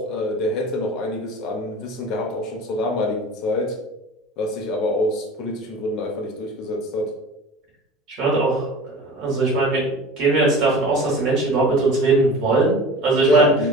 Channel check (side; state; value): both; normal; correlation 0.38